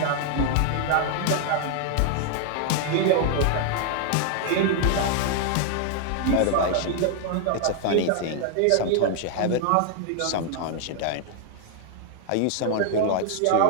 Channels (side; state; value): both; different; correlation 0.00